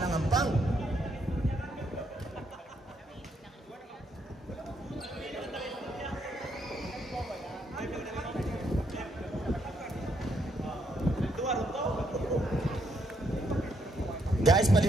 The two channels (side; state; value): both; normal; correlation 0.75